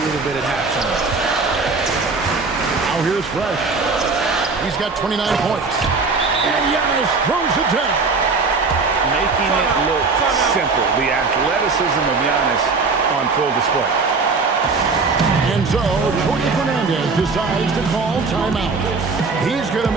little bit at halftime. Now here's Fresh. He's got 29 points. And Giannis throws it down. Making it look simple. The athleticism of Giannis on full display. And so Jorge Fernandez decides to call timeout. He's going to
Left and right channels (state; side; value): quieter; left; 4.3 dB